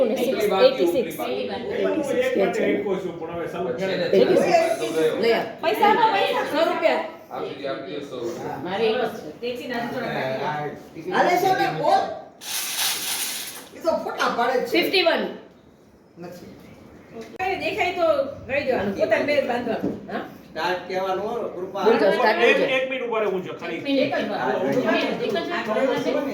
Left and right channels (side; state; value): both; identical; correlation 1.00